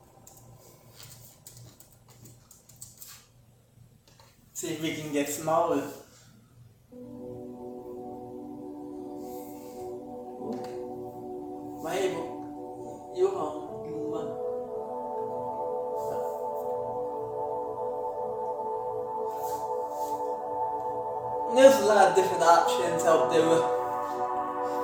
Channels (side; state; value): both; identical; correlation 1.00